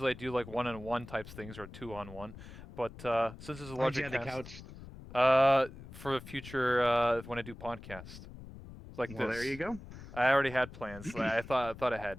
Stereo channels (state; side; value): noise; left; rumble, 15 dB below the sound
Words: I do like 1-on-1 types things or 2-on-1, but since it's a Why'd you larger have the cast, couch? for the future when I do podcast, like Well, this. there you go. I already had plans. So I thought ahead.